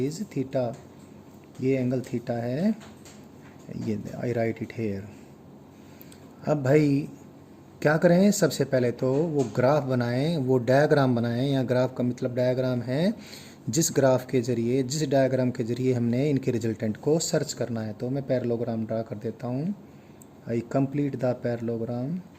थीटा, ये एंगल थीटा है, ये आई राइट इट हेयर। अब भाई क्या करें, सबसे पहले तो वो ग्राफ बनाएं, वो डायग्राम बनाएं। या ग्राफ का मतलब डायग्राम है जिस ग्राफ के ज़रिए, जिस डायग्राम के ज़रिए हमने इनके रिजल्टेंट को सर्च करना है। तो मैं पैरेललोग्राम ड्रा कर देता हूँ। I complete the parallelogram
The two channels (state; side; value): identical; both; correlation 1.00